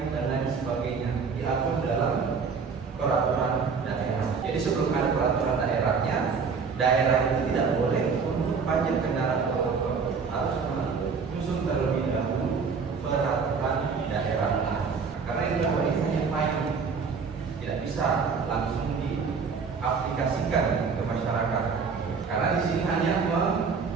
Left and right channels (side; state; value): left; quieter; 5.4 dB